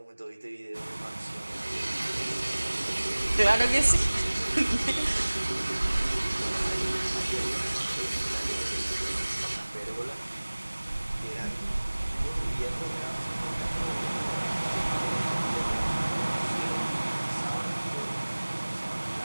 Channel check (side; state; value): both; inverted; correlation -1.00